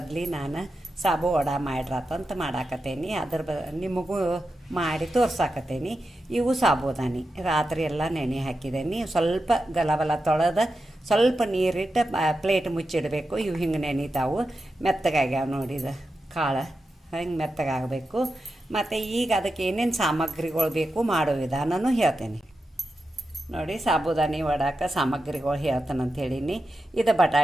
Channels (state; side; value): normal; both; correlation 0.90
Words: ನಾನು ಸಾಬು ವಡ ಮಾಡ್ರಾತಂತ ಮಾಡಾಕತ್ತೇನಿ. ನಿಮಗೂ ಮಾಡಿ ತೋರ್ಸಾಕತ್ತೇನಿ. ಇವು ಸಾಬುದಾನಿ ರಾತ್ರಿ ಎಲ್ಲ ನೆನೆ ಹಾಕಿದ್ದೇನೆ. ಸ್ವಲ್ಪ ಗಲಬಲ ತೊಳೆದು ಸ್ವಲ್ಪ ನೀರಿಟ್ಟು ಪ್ಲೇಟ್ ಮುಚ್ಚಿಡಬೇಕು. ಇವು ಹಿಂಗೆ ನೆನಿತಾವು, ಮೆತ್ತಗಾಗ್ಯಾವ ನೋಡಿದ ಕಾಳು ಹಿಂಗೆ ಮೆತ್ತಗಾಗಬೇಕು. ಮತ್ತು ಈಗ ಅದಕ್ಕೆ ಏನೇನು ಸಾಮಗ್ರಿಗಳು ಬೇಕು ಮಾಡೋ ವಿಧಾನನೂ ಹೇಳ್ತೇನೆ ನೋಡಿ. ಸಾಬುದಾನಿ ವಡಾಕ ಸಾಮಗ್ರಿಗಳು ಹೇಳ್ತಾನಂತ ಹೇಳೀನಿ. ಇದು